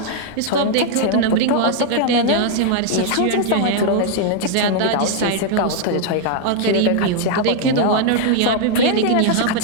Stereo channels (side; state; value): both; different; correlation 0.00